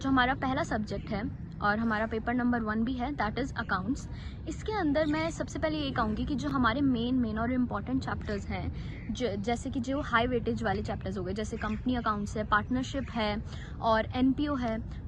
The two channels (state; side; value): identical; both; correlation 1.00